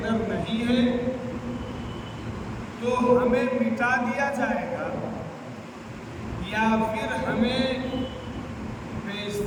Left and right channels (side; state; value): both; identical; correlation 1.00